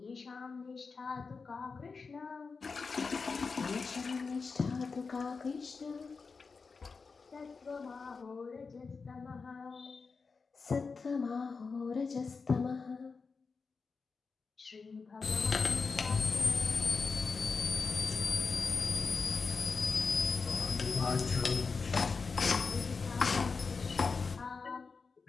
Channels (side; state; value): right; quieter; 4.7 dB